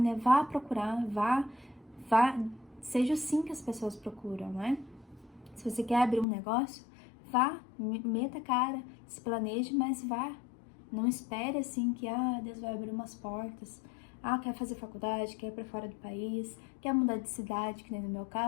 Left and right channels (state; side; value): drops out; right; at 6.2 s